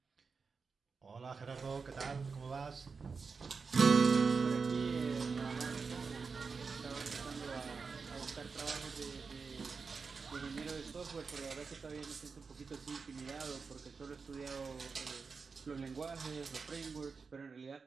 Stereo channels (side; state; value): left; quieter; 5.0 dB